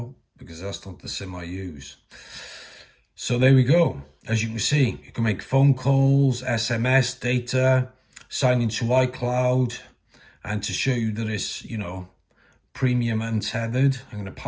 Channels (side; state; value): both; identical; correlation 1.00